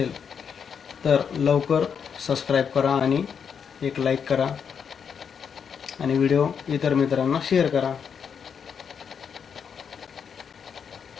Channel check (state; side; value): quieter; right; 7.0 dB